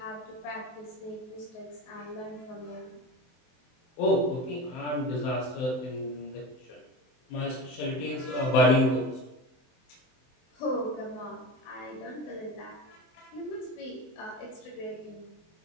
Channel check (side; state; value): right; late; 23 ms